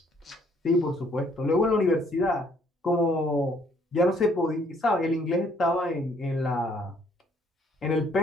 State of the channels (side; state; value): both; normal; correlation 0.64